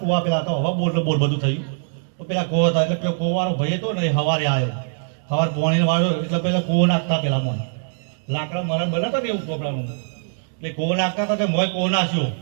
કૂવા પેલા તો હવા બોલ બધું થયું. તો પેલા કૂવો હતા એટલે પેલો કૂવાનો ભાઈ હતો ને એ હવારે આવ્યો સવાર પોણી વાળો એટલે પેલા કૂવો નાખતા પેલા મોય લાકડા મરણ બનાવતા ને એવું ચોપડાનું એટલે કૂવો નાખતા હતા તે મોય કૂવો નાખ્યો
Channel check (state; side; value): silent; left; digital silence